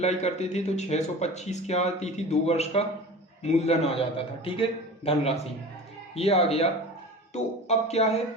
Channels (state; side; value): normal; both; correlation 0.35